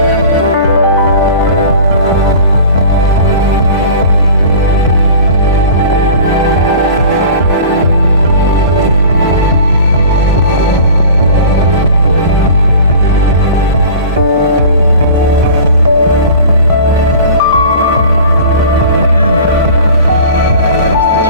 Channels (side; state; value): both; inverted; correlation -0.41